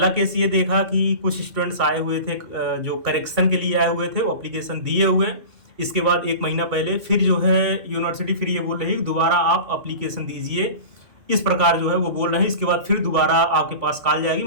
केस ये देखा कि कुछ स्टूडेंट्स आए हुए थे, जो करेक्शन के लिए आए हुए थे, वो अप्लीकेशन दिए हुए। इसके बाद 1 महीना पहले फिर जो है यूनिवर्सिटी फिर ये बोल रही है दोबारा आप अप्लीकेशन दीजिए, इस प्रकार जो है वो बोल रहे हैं। इसके बाद फिर दोबारा आपके पास कॉल जाएगी,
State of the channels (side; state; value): left; late; 2.3 ms